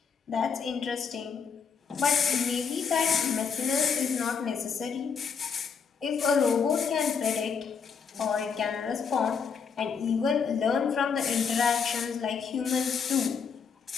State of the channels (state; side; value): quieter; right; 6.2 dB